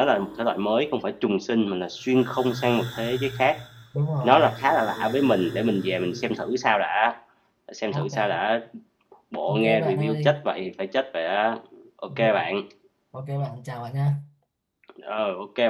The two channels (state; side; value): identical; both; correlation 1.00